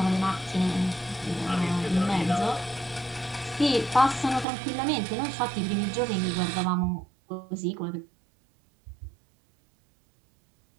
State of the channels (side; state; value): left; drops out; at 4.5 s